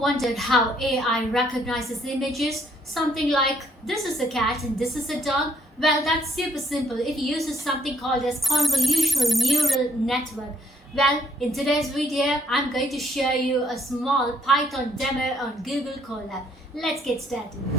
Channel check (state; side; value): normal; both; correlation 0.68